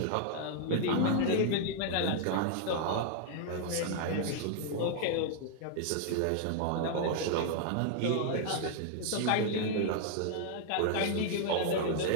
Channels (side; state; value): both; different; correlation -0.01